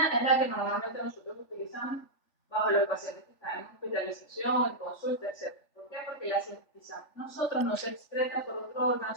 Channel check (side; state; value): right; late; 3.4 ms